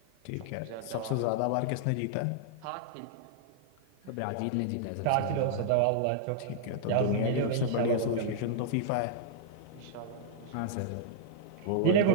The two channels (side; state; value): both; different; correlation -0.01